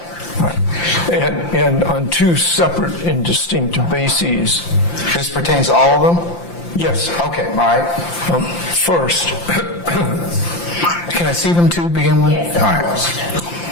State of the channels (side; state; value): right; late; 5.8 ms